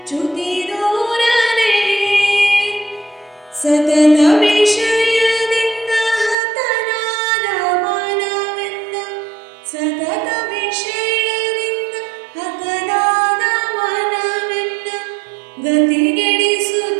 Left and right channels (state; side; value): drops out; left; at 6.4 s